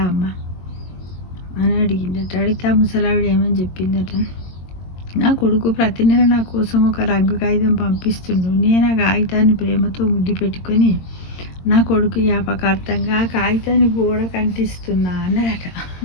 అమ్మ అని అడిగిందట. అడిగితే ఆ ముసలావిడ ఏమని చెప్పిందట, నా కొడుకు ప్రతి నెల నా కోసం ఒక రంగు కాగితం పంపిస్తుండు. నేను ఆ కాగితాన్ని ప్రేమతో ముద్దు పెట్టుకొని నా కొడుకు జ్ఞాపకార్థంగా ఆ కాగితాన్ని గోడకు అంటిస్తున్నా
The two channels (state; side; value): late; right; 22 ms